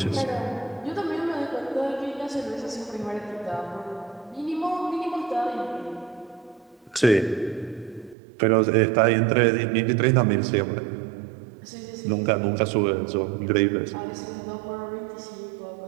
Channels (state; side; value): drops out; left; at 8.2 s